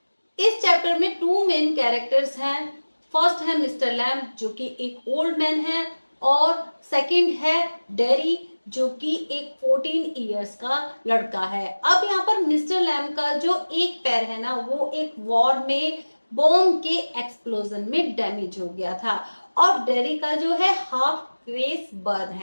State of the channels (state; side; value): inverted; both; correlation -1.00